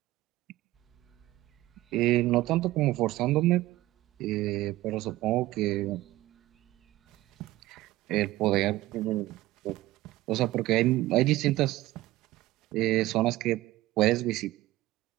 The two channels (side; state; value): left; quieter; 17.0 dB